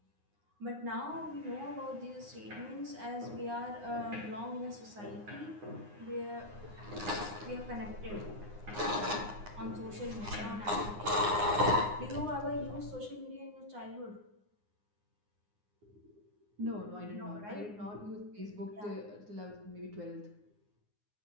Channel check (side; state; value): left; late; 9.7 ms